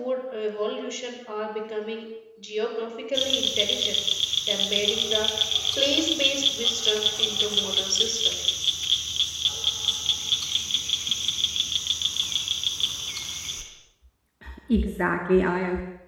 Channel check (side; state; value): both; identical; correlation 1.00